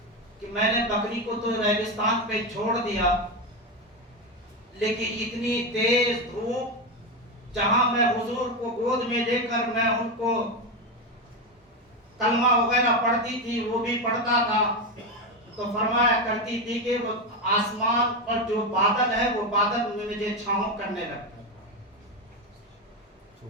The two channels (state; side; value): normal; both; correlation 0.13